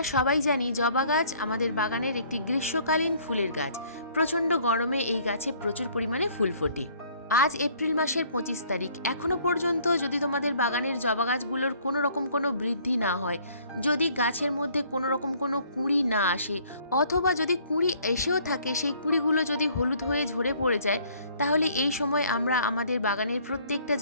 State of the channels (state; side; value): inverted; both; correlation -0.59